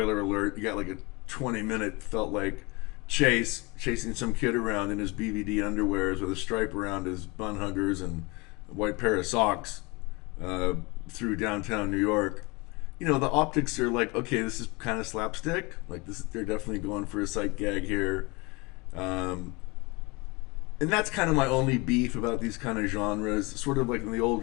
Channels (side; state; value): right; quieter; 26.2 dB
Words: alert, you got like a 20-minute felt like chasing some kid around in his BVD underwears with a stripe around his bun huggers and a white pair of socks through downtown New York. You know, the optics are like, okay, this is kind of slapstick. Like they're definitely going for a sight gag here. And that's kind of my only beef about these kind of genres. Sort of like in the